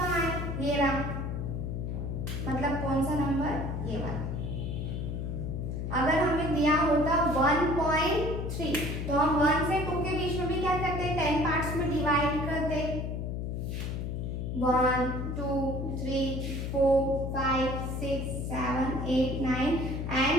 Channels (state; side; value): noise; left; hum, 3 dB below the sound